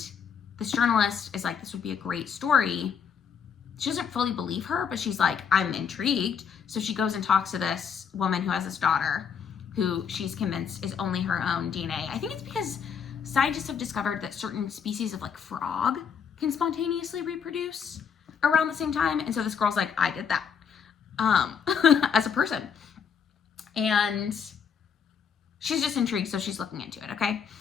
this journalist is like, this would be a great story. She doesn't fully believe her, but she's like, I'm intrigued. So she goes and talks to this woman who has this daughter who she's convinced is only her own DNA. I think it's because scientists have discovered that certain species of like frog can spontaneously reproduce around the same time. And so this girl's like, I did that. As a person, and she's just intrigued, so she's looking into it. Okay,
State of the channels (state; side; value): quieter; right; 7.0 dB